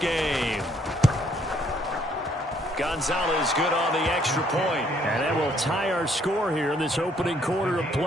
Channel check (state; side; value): normal; both; correlation 0.67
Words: Gonzalez good on the extra point. And that will tie our score here in this opening quarter of